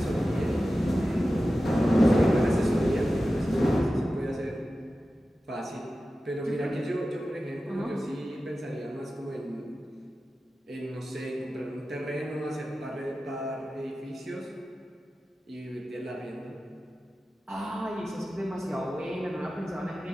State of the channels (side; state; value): both; normal; correlation 0.94